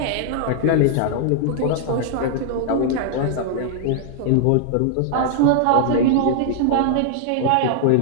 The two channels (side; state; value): both; different; correlation -0.01